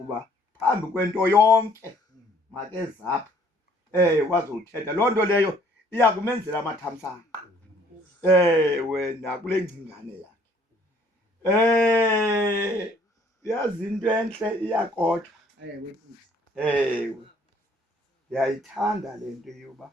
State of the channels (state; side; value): normal; both; correlation 0.60